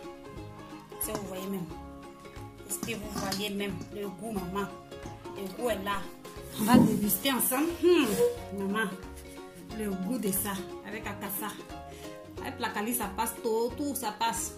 Si vous voyez même. déguster, vous voyez même le goût, maman. Le goût est là. On va déguster ensemble. Maman, le goût de ça avec akassa. Avec la cali, ça passe tout ça passe.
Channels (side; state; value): both; identical; correlation 1.00